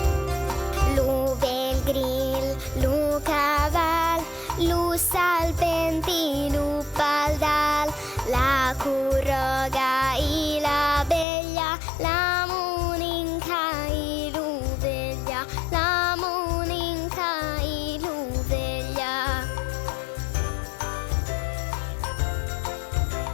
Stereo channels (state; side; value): drops out; right; at 11.2 s